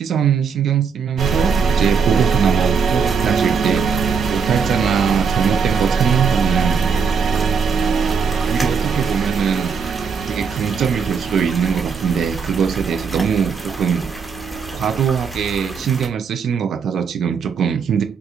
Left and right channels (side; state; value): left; quieter; 5.9 dB